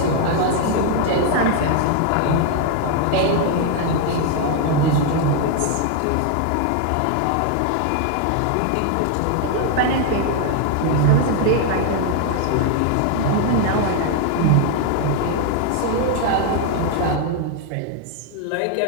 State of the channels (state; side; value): different; both; correlation 0.00